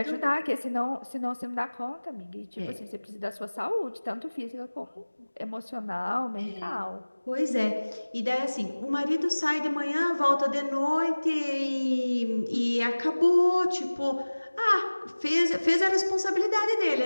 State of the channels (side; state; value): both; inverted; correlation -1.00